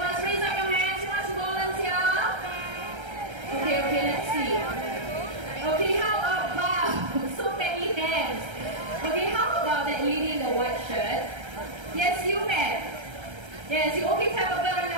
first. Raise up your hands. Who wants to volunteer? Okay, let's see. Okay, how about, so many hands. Okay, how about that lady in the white shirt? Yes, you ma'am. Yes, you okay to have a bird on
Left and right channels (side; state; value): left; late; 1.3 ms